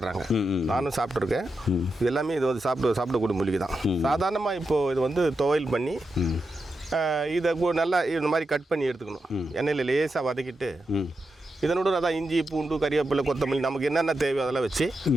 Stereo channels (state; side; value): normal; both; correlation 0.87